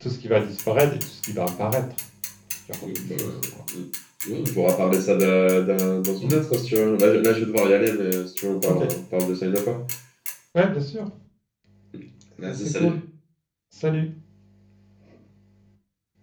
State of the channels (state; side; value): identical; both; correlation 1.00